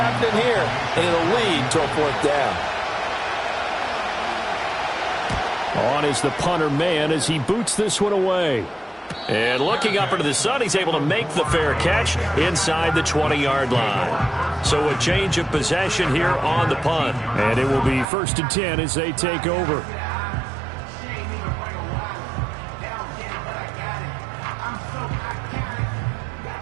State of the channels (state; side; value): drops out; left; at 18.1 s